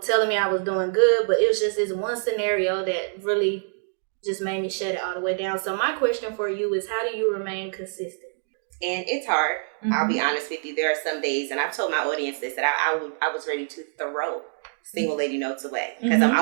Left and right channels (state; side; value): quieter; left; 38.8 dB